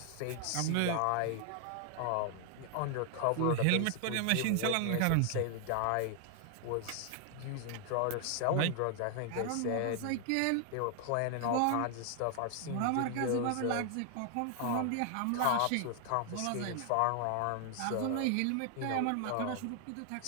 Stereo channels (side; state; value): both; different; correlation 0.00